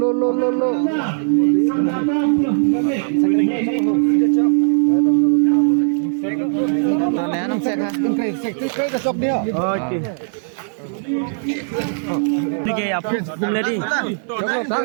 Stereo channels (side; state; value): left; silent; 67 dB below the other